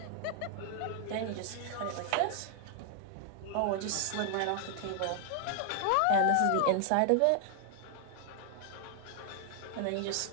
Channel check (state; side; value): different; both; correlation 0.00